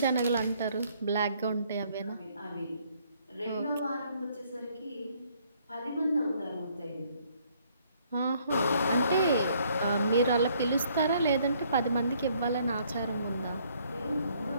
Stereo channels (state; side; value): inverted; both; correlation -0.65